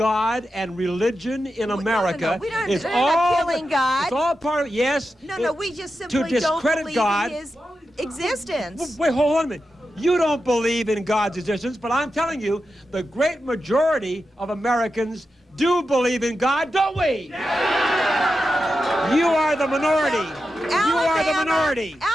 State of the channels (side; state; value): both; normal; correlation 0.89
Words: and religion in America. We don't, It's they're all not killing God. It's all part of yes. No, we just simply don't discredit believe God. in his existence. Wait, hold on a minute. You don't believe in God's existence, but I'm telling you, the great majority of Americans do believe in God, don't we? You are the minority. You are the minority.